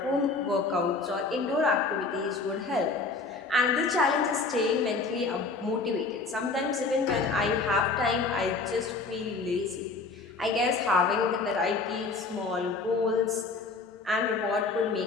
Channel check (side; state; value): right; quieter; 4.0 dB